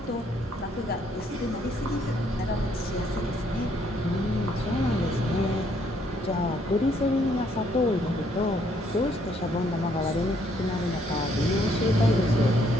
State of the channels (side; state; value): both; normal; correlation 0.68